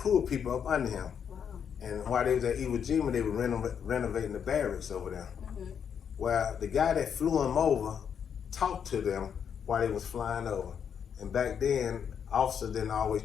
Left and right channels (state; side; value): quieter; right; 7.7 dB